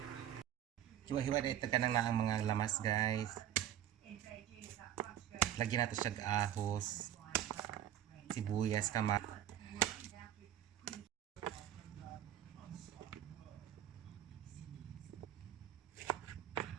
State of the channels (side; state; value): left; quieter; 11.0 dB